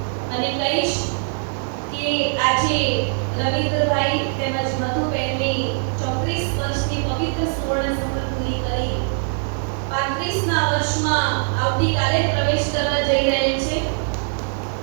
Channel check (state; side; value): silent; left; digital silence